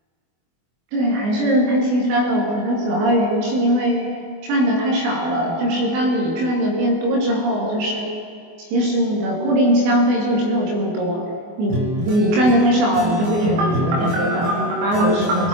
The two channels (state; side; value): late; left; 24 ms